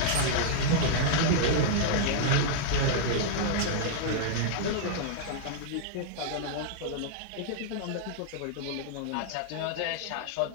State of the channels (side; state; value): both; different; correlation -0.01